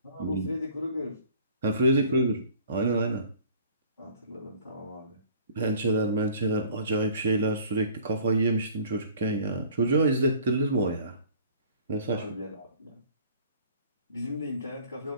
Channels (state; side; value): inverted; both; correlation -0.51